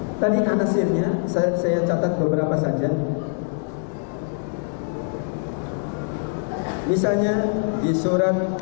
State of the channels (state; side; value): silent; right; 60 dB below the other